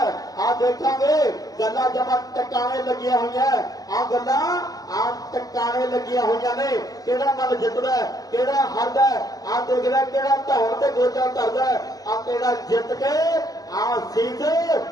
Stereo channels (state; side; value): late; right; 0.18 ms